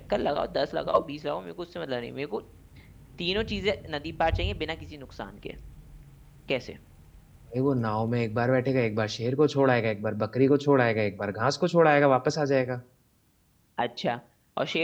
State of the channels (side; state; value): both; identical; correlation 1.00